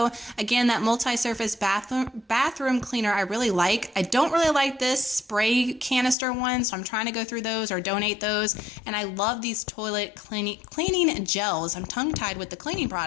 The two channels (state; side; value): drops out; right; at 6.2 s